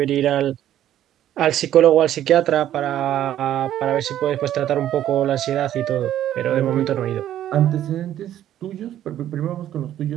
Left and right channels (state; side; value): quieter; left; 11.8 dB